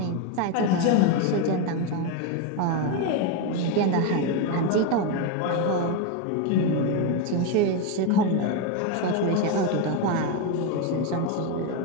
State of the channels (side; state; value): both; different; correlation 0.03